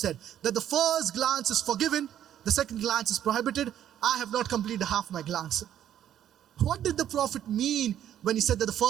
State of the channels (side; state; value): left; quieter; 10.7 dB